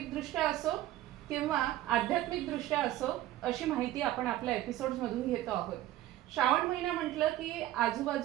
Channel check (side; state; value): left; quieter; 14.4 dB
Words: असो किंवा आध्यात्मिकदृष्ट्या असो, अशी माहिती आपण आपल्या एपिसोड्समधून घेतो आहोत. श्रावण महिना म्हटलं की